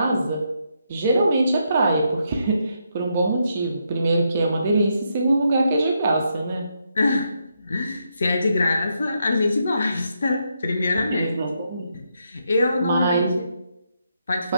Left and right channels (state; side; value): inverted; both; correlation -0.79